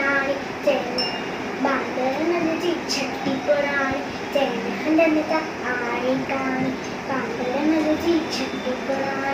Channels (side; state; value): both; identical; correlation 1.00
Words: बांदरमल जी छटी पुराणी चैन हंधनि त आहे काणी। बांदरमल जी छटी